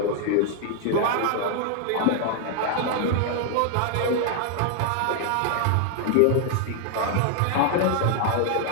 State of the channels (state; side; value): different; both; correlation 0.00